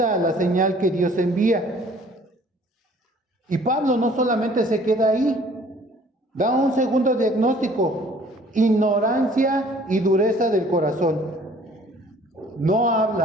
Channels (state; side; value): normal; both; correlation 0.55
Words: a la señal que Dios envía. Y Pablo no solamente se queda ahí, da un segundo diagnóstico: ignorancia y dureza del corazón. No